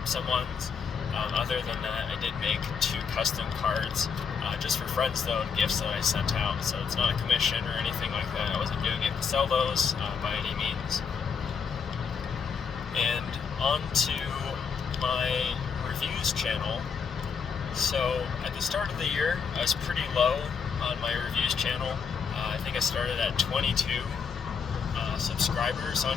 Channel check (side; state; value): right; quieter; 6.2 dB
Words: some ones. Other than that, I did make 2 custom cards, just for friends though, and gifts that I sent out. So it's not a commission or anything like that. I wasn't doing it to sell those by any means. And on to my reviews channel. So at the start of the year, I was pretty low on my reviews channel. I think I started at 22 subscribers on